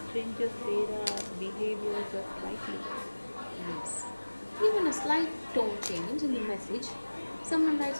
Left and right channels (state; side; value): inverted; both; correlation -1.00